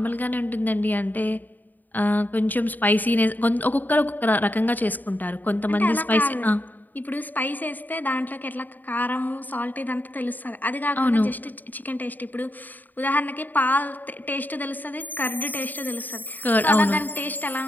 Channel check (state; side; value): late; right; 0.086 ms